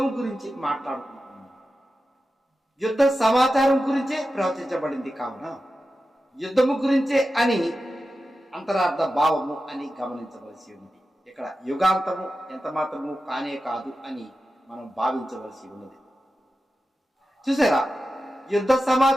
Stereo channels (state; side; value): normal; both; correlation 0.92